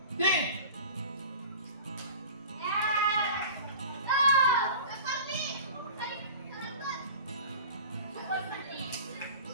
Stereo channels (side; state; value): both; inverted; correlation -0.39